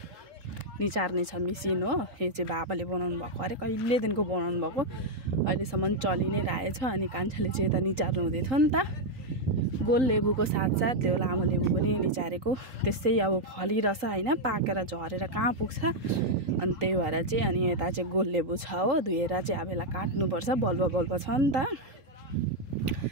निचार्ने छ मिसिन हो। यो चाहिँ बाबाले बनाउनु भएको, अरे कहिलेदेखिको बनाउनु भएको, अहिलेसम्म चलि नै रहेछ। अनि कान्छाले चाहिँ यता निचार्नु हुँदै थियो नि त, गोल लेबुको साथसाथ त्यो लामो लेबु पनि निचारेको। त्यसै अब फलिरहेछ हैन, पाकेर झरेर कहाँ पुग्छ। अनि त्यही भएर चाहिँ अनि यता चाहिँ गोल लेबु छ हो, धुएर चाहिँ अब यसलाई काट्नुपर्छ, बल्ब छ नि त।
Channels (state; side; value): late; left; 3.8 ms